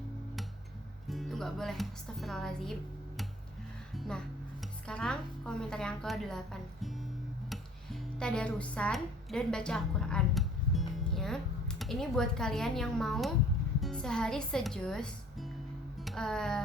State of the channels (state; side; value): normal; both; correlation 0.52